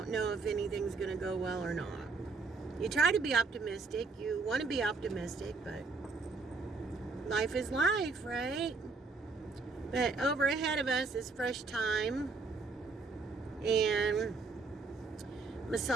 know if anything's going to go well or not. you try to be optimistic. You want to be optimistic, but life is life, right? But over ahead of us is Fresh Time and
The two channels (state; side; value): quieter; left; 4.0 dB